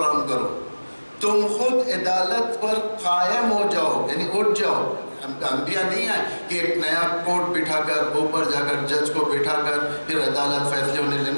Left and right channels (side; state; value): both; inverted; correlation -1.00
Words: کرو، تم خود عدالت پر قائم ہو جاؤ، یعنی اٹھ جاؤ. انبیاء نہیں آئے کہ ایک نیا کوٹ بٹھا کر اوپر جا کر جج کو بٹھا کر پھر عدالت فیصلے ہونے لے.